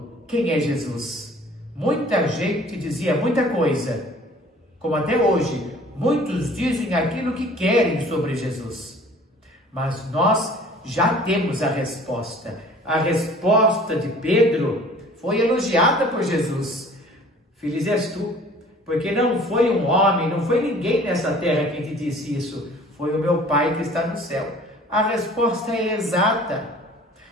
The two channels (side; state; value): both; normal; correlation 0.50